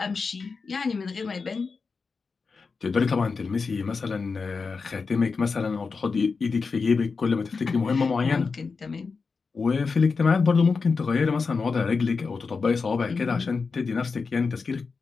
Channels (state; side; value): quieter; right; 4.7 dB